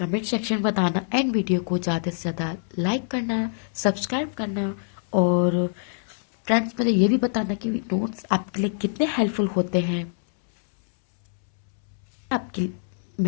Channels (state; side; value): silent; right; 62 dB below the other